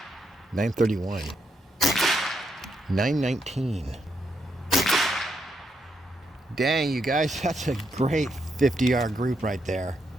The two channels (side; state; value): both; normal; correlation 0.79